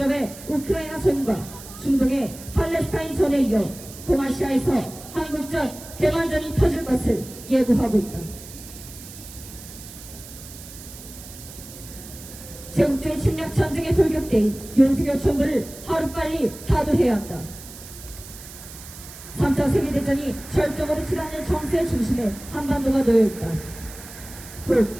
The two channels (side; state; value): right; noise; hiss, 15 dB below the sound